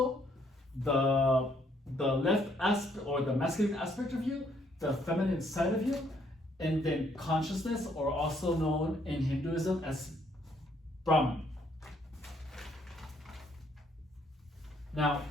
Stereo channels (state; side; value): normal; both; correlation 0.69